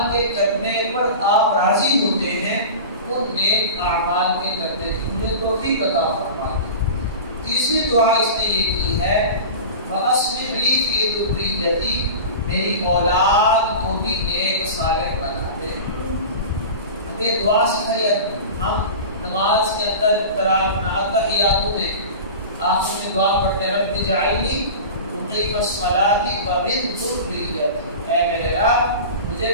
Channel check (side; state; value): both; inverted; correlation -0.32